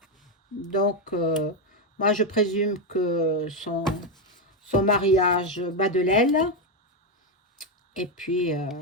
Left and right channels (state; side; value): normal; both; correlation 0.06